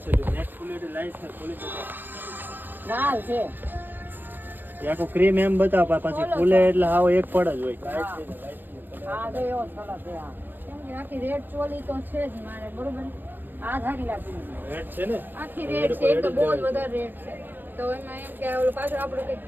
છે નેટ ક્વોલિટી લાઈટ છે, ક્વોલિટી લાલ છે. એ આખો ક્રીમ એમ બતાવ પછી ફૂલે એટલે હાવ એક પડ જ હોય. હા તો એવો સરસ છે. આ કેમ કે આખી રેડ ચોલી તો છે જ મારે, બરોબર. આ ધારી લાગી રેડ છે ને, આખી રેડ છે. એક તો બહુ જ વધારે રેડ છે. તો એમાં એમ કે ઓલું પાછળ આપણે કંઈક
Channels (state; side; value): late; left; 0.093 ms